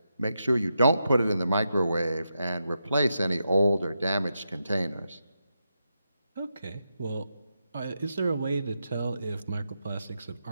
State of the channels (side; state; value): both; inverted; correlation -0.86